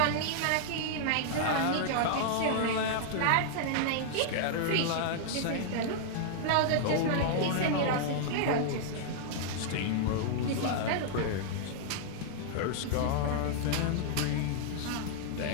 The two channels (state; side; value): different; both; correlation -0.01